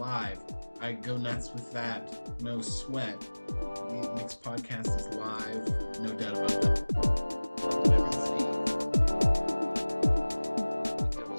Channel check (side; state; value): both; inverted; correlation -1.00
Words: I go nuts with that. No sweat. The mix podcast is live. No doubt about that. Welcome everybody. I think that